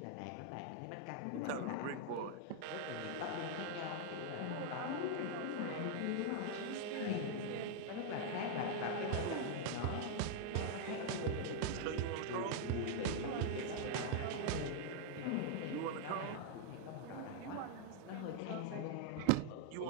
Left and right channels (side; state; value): both; different; correlation 0.00